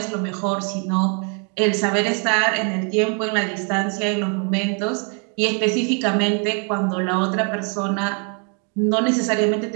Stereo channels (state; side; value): quieter; left; 38.1 dB